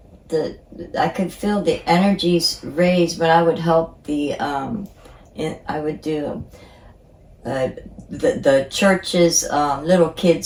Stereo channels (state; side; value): identical; both; correlation 1.00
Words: I could feel the energies raised when I would help I would do the church's little